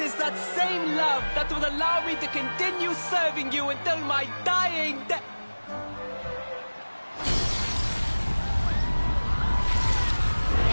that same love that will allow me to continue serving you until my dying day.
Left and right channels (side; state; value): both; inverted; correlation -1.00